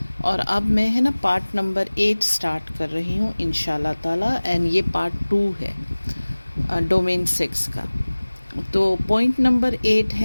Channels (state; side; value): inverted; both; correlation -1.00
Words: اور اب میں پارٹ نمبر 8 سٹارٹ کر رہی ہوں انشاءاللہ تعالی، اینڈ یہ پارٹ 2 ہے ڈومین 6 کا۔ تو پوائنٹ نمبر 8